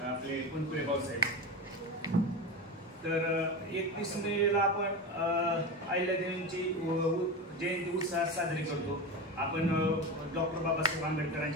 आपले कुंकुळे भाऊसाहेब. तर 31 मेला आपण अहिल्यादेवींची जयंती उत्साहात साजरी करतो. आपण डॉक्टर बाबासाहेब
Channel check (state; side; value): normal; both; correlation 0.23